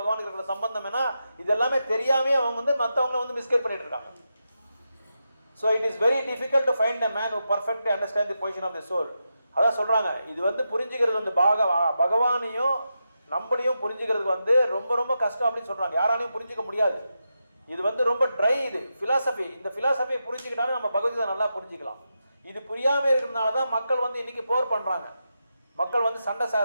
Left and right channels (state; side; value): inverted; both; correlation -0.87